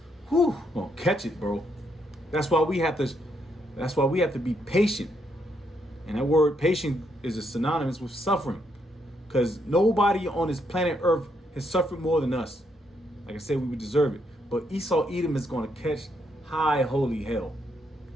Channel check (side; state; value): both; normal; correlation 0.76